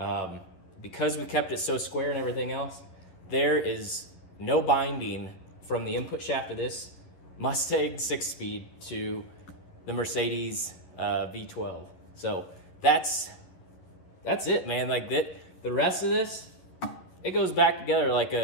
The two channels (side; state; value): right; late; 11 ms